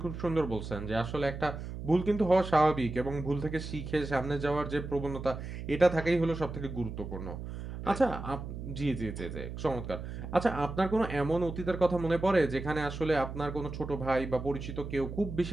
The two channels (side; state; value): right; noise; hum, 8 dB below the sound